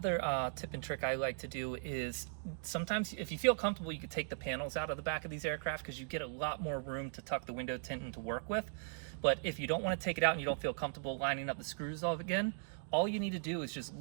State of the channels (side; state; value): left; silent; digital silence